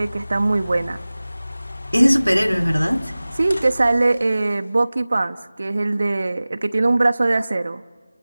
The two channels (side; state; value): both; inverted; correlation -0.98